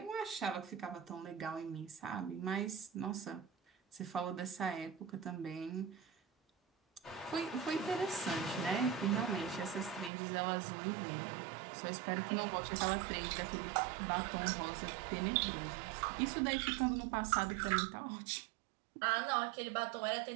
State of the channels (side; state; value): left; drops out; at 10.1 s